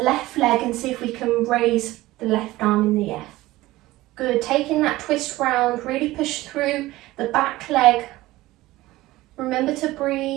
left leg and see if we can raise the left arm in the air. Good. Taking that twist round, really push through the back leg. Remember to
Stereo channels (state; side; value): quieter; left; 17.9 dB